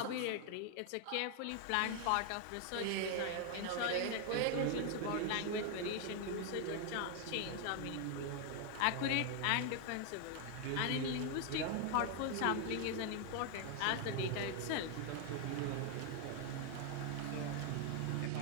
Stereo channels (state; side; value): different; both; correlation 0.00